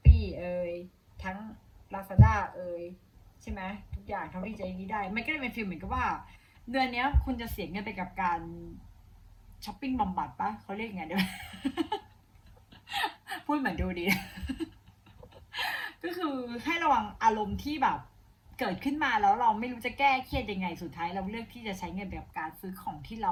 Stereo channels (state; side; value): identical; both; correlation 1.00